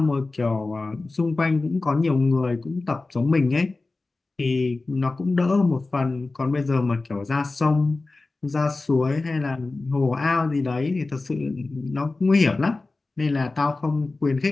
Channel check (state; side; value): quieter; right; 3.4 dB